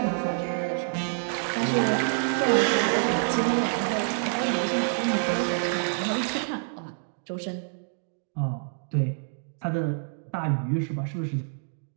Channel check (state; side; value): silent; left; digital silence